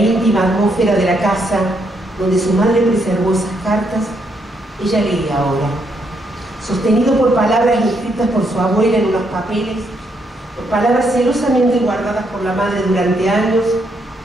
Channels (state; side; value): normal; both; correlation 0.76